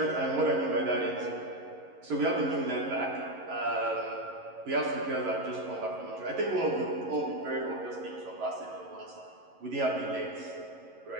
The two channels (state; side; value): late; left; 11 ms